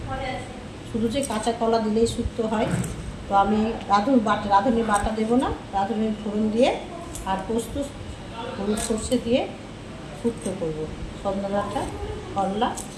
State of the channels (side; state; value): both; identical; correlation 1.00